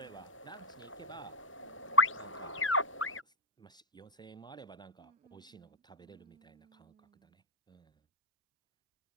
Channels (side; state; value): both; normal; correlation -0.02